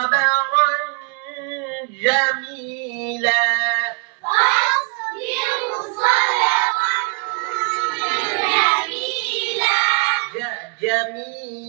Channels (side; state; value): left; quieter; 35.7 dB